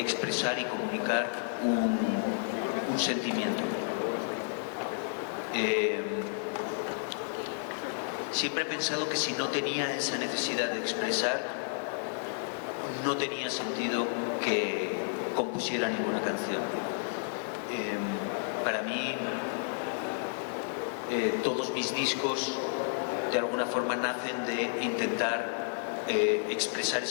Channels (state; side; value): silent; right; digital silence